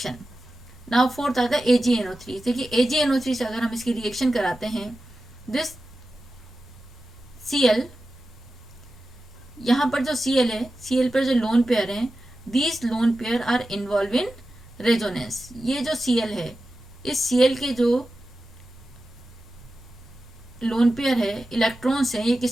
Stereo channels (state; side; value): normal; both; correlation 0.93